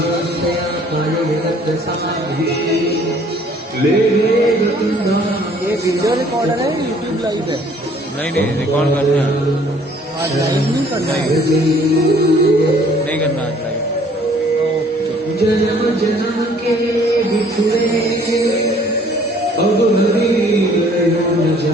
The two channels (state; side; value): normal; both; correlation 0.57